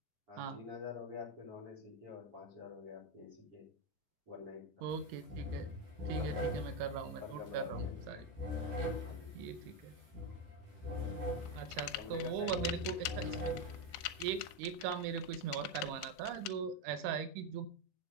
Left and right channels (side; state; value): both; normal; correlation 0.09